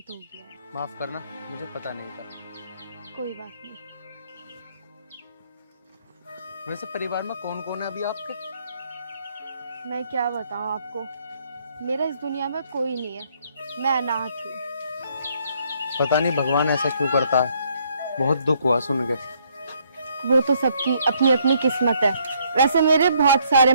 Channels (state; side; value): inverted; both; correlation -0.68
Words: हो गया है। माफ करना, मुझे पता नहीं था। कोई बात नहीं। वैसे परिवार में कौन कौन है अभी आपके? मैं क्या बताऊं आपको, मेरा इस दुनिया में कोई नहीं है, मैं अनाथ हूँ। पता नहीं भगवान ऐसा क्यों करता है, बहुत दुख हुआ सुन के। वो तो सबकी अपनी अपनी किस्मत है। वैसे मेरे बहुत सारे